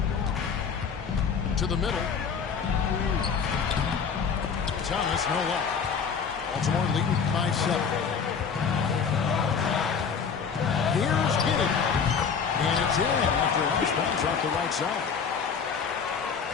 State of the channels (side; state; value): right; quieter; 6.3 dB